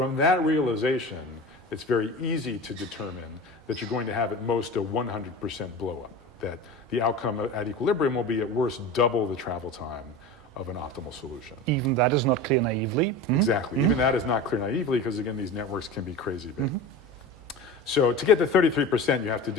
that realization, it's very easy to determine that you're going to have at most a 100% blow up, that the outcome at equilibrium will be at worst double the travel time of an optimal solution. Even that is not clear naively. Exactly, even that is not clear naively, because again, these networks can be crazy big. So to get to 33%, you have to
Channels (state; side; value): normal; both; correlation 0.31